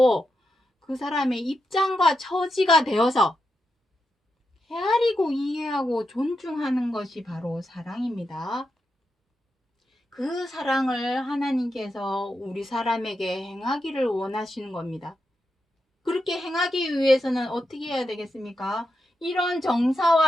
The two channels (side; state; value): both; normal; correlation 0.86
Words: 그 사람의 입장과 처지가 되어서 헤아리고 이해하고 존중하는 것이 바로 사랑입니다. 그 사랑을 하나님께서 우리 사람에게 행하기를 원하시는 겁니다. 그렇게 행하기 위해서는 어떻게 해야 되겠습니까? 이런